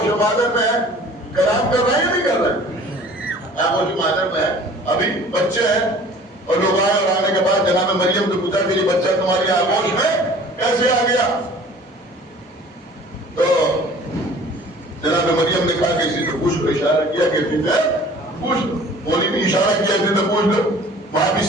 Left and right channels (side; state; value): both; normal; correlation 0.48